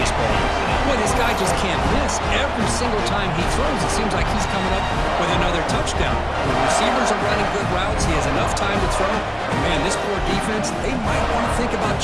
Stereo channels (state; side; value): identical; both; correlation 1.00